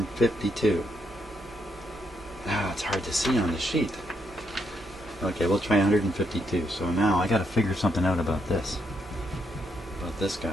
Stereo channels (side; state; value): both; normal; correlation 0.78